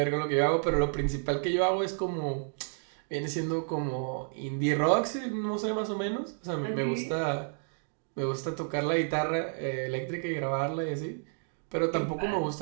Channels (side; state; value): left; silent; digital silence